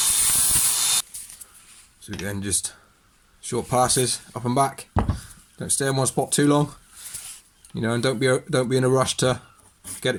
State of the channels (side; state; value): both; identical; correlation 1.00